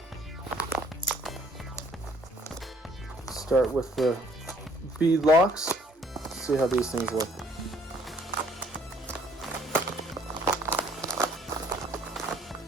Start with the bead locks. See how these things look.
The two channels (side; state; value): both; normal; correlation 0.61